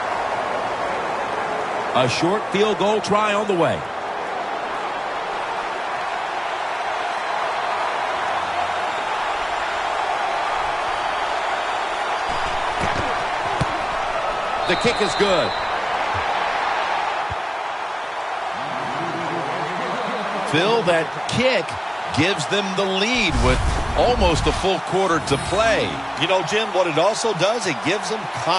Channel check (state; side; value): identical; both; correlation 1.00